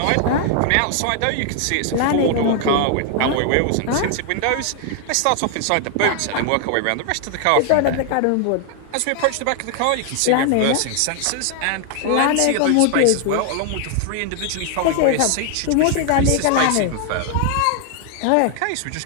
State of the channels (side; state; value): both; different; correlation 0.00